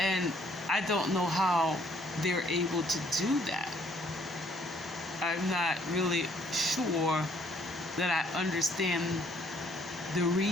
I don't know how they're able to do that. I'm not really sure that I understand the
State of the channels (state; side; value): normal; both; correlation 0.64